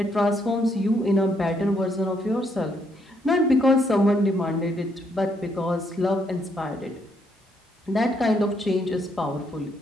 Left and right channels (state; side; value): normal; both; correlation 0.73